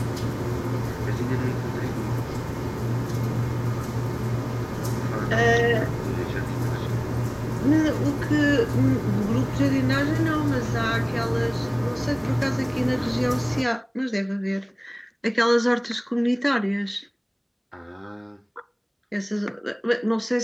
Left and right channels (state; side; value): identical; both; correlation 1.00